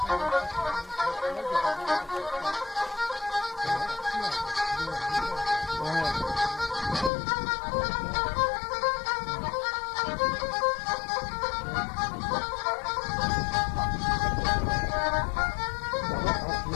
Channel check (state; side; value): drops out; right; at 7.1 s